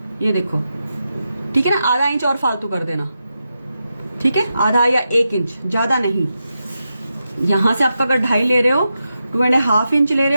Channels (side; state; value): both; inverted; correlation -0.88